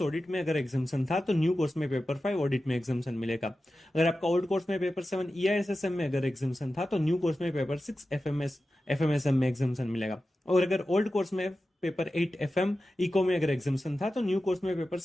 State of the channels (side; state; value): both; normal; correlation 0.93